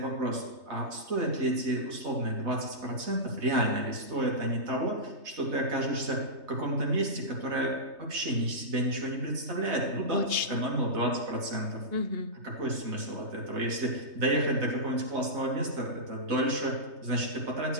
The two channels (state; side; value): late; left; 3.3 ms